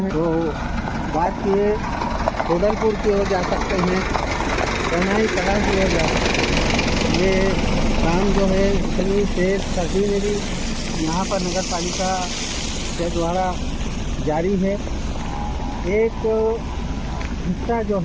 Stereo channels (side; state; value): both; identical; correlation 1.00